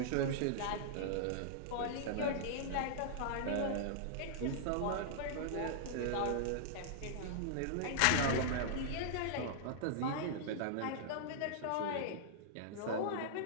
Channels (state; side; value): different; both; correlation -0.01